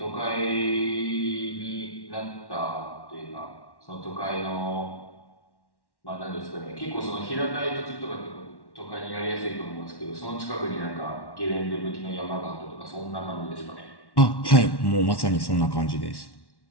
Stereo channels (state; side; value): late; right; 1.1 ms